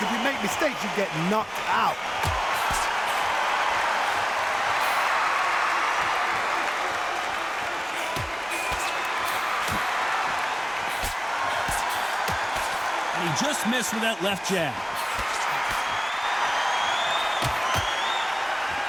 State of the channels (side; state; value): both; identical; correlation 1.00